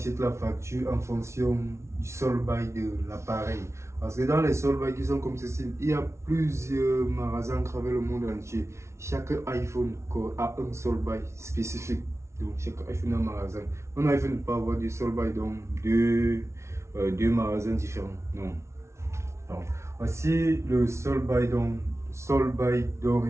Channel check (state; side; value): late; left; 0.13 ms